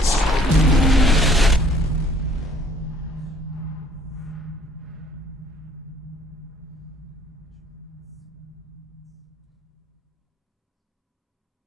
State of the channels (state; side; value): normal; both; correlation 0.59